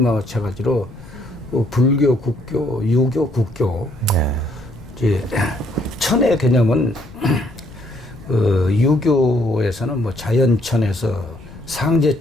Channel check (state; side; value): noise; left; rumble, 19 dB below the sound